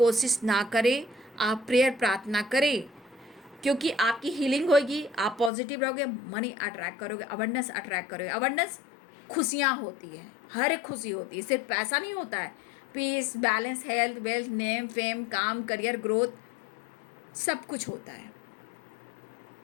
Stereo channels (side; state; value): right; drops out; at 5.5 s